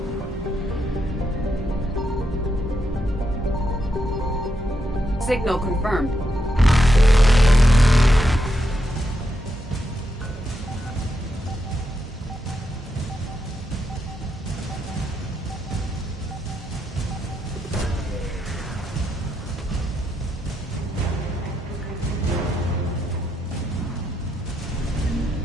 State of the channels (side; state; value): both; normal; correlation 0.82